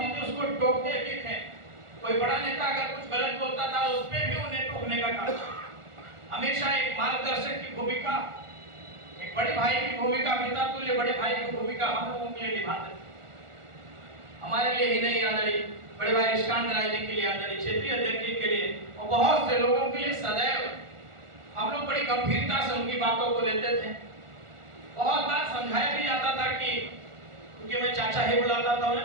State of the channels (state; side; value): late; left; 1.4 ms